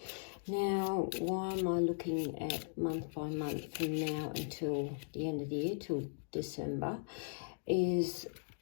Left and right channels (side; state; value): right; silent; digital silence